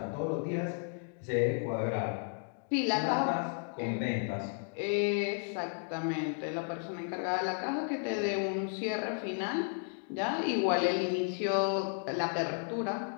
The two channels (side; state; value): right; silent; 55 dB below the other